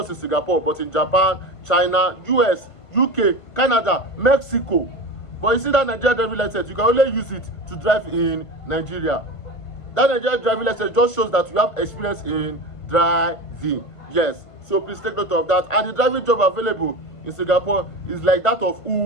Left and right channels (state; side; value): late; right; 1.5 ms